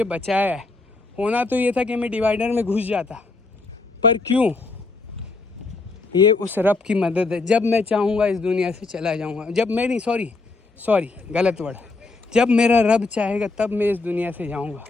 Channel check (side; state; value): right; quieter; 3.6 dB